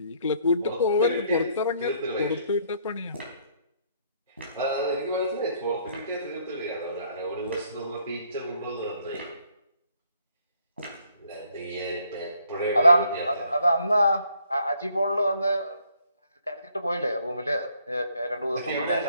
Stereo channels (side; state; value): both; inverted; correlation -0.66